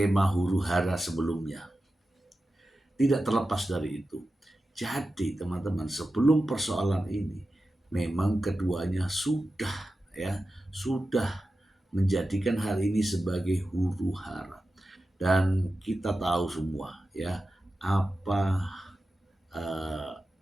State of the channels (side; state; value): both; normal; correlation 0.93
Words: huru-hara sebelumnya. Tidak terlepas dari itu. Jadi teman-teman, sebelum persoalan ini memang keduanya sudah menjadikan hal ini sebagai huru-hara. Dan kita tahu semua ya apa